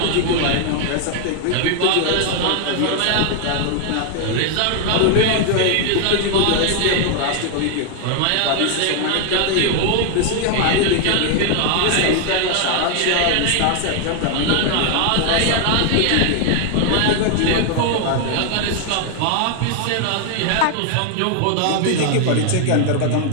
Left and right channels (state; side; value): different; both; correlation 0.00